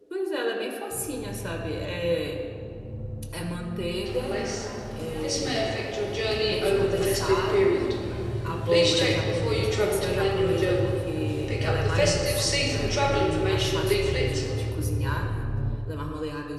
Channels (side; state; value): both; identical; correlation 1.00